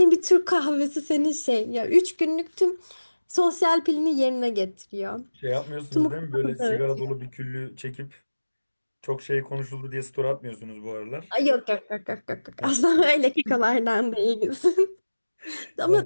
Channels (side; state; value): both; inverted; correlation -1.00